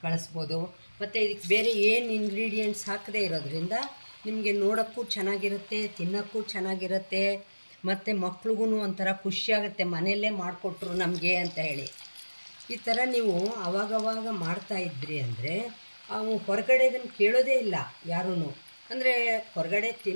ಕಳಿಸ್ಬೋದು. ಮತ್ತು ಇದಕ್ಕೆ ಬೇರೆ ಏನು ಇಂಗ್ರೀಡಿಯೆಂಟ್ಸ್ ಹಾಕದೇ ಇರೋದ್ರಿಂದ ನಿಮಗೆ ನೋಡೋಕ್ಕೂ ಚೆನ್ನಾಗಿರುತ್ತೆ, ತಿನ್ನೋಕ್ಕೂ ಚೆನ್ನಾಗಿರುತ್ತೆ. ಮತ್ತು ಮಕ್ಳಿಗೂ ಒಂಥರ ಖುಷಿಯಾಗುತ್ತೆ, ಮನೆಯಲ್ಲೇ ಮಾಡಿಕೊಟ್ರು ನಮಗೆ ಅಂತ ಹೇಳಿ. ಈ ಥರ ನೀವು ಆವಾಗವಾಗ ಮಾಡ್ತಾಯಿದ್ರಿ ಅಂದರೆ ಅವು ಹೊರಗಡೆದನ್ನು ಕೇಳೋದೇ ಇಲ್ಲ ಯಾರೂ. ಅಂದರೆ ಹೊರಗಡೆ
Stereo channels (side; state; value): both; inverted; correlation -1.00